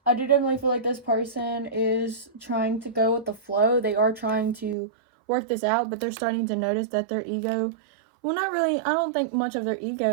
I do definitely feel like this person is trying to go with the flow. They are trying to work this out, but they're starting to notice that their ego, well, not really, I don't think much of their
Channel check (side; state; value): left; drops out; at 4.8 s